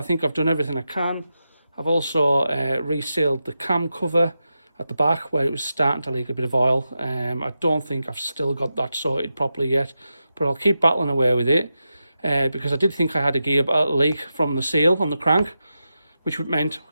think I've done everything I can. I've also resealed the cam cover at the back where it was starting to leak a bit of oil. I don't think I've still got that sorted properly yet, but I'll keep battling away with it because I did think I had a gear leak from the seal on the crank, which meant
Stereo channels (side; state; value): both; inverted; correlation -0.89